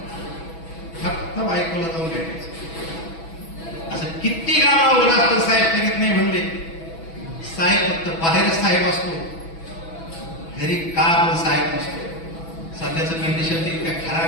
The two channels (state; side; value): late; right; 6.1 ms